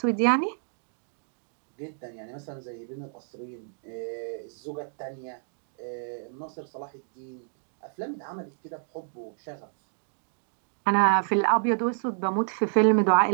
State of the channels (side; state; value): left; silent; digital silence